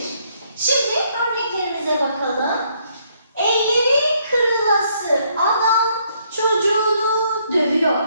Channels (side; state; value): both; inverted; correlation -0.70